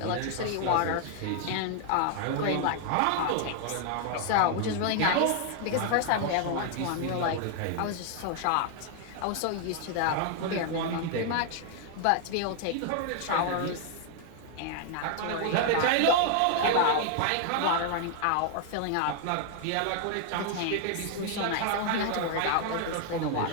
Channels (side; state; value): both; different; correlation 0.00